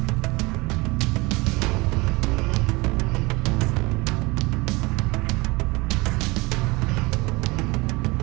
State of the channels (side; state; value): left; quieter; 24.1 dB